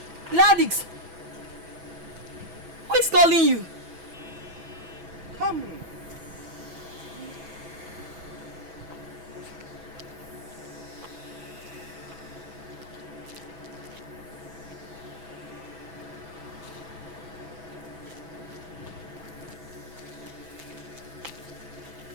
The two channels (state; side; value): late; left; 6.1 ms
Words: Gladys, who is calling you? Come.